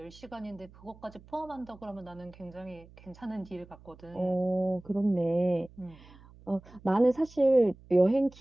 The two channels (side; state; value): right; noise; hum, 23 dB below the sound